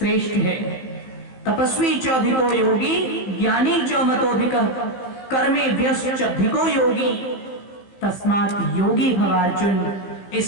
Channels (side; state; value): right; late; 15 ms